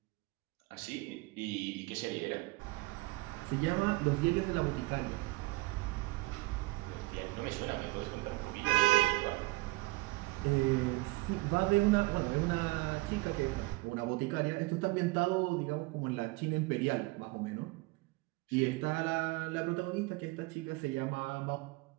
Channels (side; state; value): left; quieter; 22.7 dB